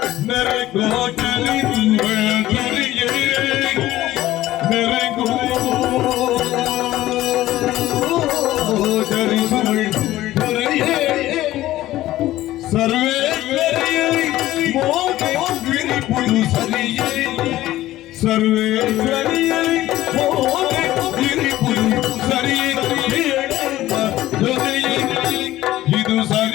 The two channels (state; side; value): quieter; right; 15.3 dB